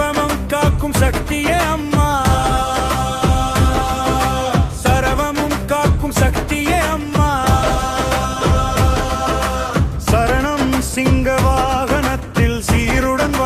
காக்கும் சக்தியே அம்மா, சர்வமும் காக்கும் சக்தியே அம்மா, சரணம் சிங்க வாகனத்தில் சீருடன்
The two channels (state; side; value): identical; both; correlation 1.00